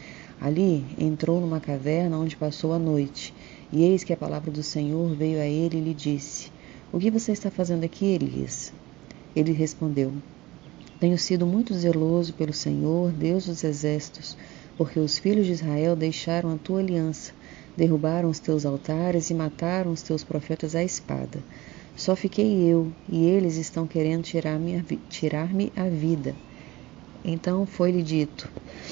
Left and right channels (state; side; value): quieter; left; 19.3 dB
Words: Ali entrou numa caverna onde passou a noite, e eis que a palavra do Senhor veio a ele e lhe disse: O que você está fazendo aqui, Elias? Ele respondeu: Tenho sido muito zeloso pelo Senhor, Deus dos exércitos, porque os filhos de Israel deixaram a tua aliança, derrubaram os teus altares e mataram os teus profetas à espada. Só fiquei eu, e eles estão querendo tirar-me a vida. Então foi-lhe dito: